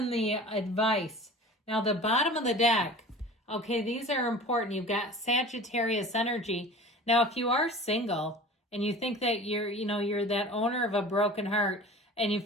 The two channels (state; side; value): normal; both; correlation 0.40